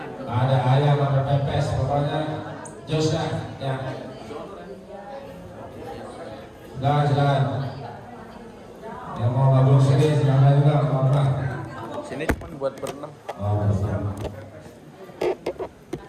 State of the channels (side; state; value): both; identical; correlation 1.00